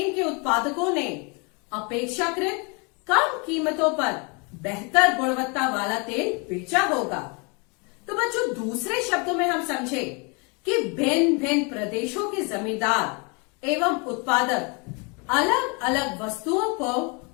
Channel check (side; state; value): right; quieter; 31.9 dB